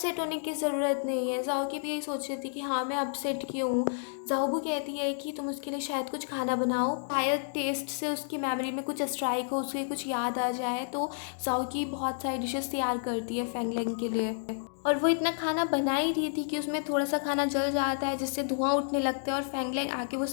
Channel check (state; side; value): silent; right; digital silence